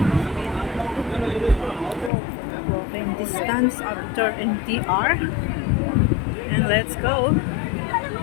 Walking distance after MTR. And let's go.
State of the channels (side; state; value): right; drops out; at 2.1 s